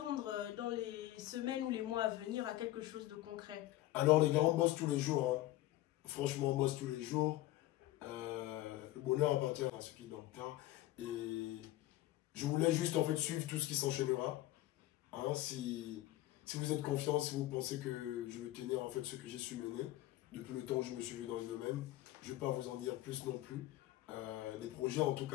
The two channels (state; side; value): quieter; right; 15.7 dB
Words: dans les semaines ou les mois à venir à quelque chose de concret? Alors les gars, on bosse tous les jours. Hein. Franchement, on bosse tous les jours. Le bonheur appartient à ceux qui dorment tard. Et je voulais juste en fait suivre tout ce qui s'enchaînera. Hein, si vous êtes confiant, si vous pensez que je vais tenir en fait ce que j'ai su mener depuis le temps où je me suis vu dans le domaine, je ne vais pas vous en dire plus non plus. Des projets en tout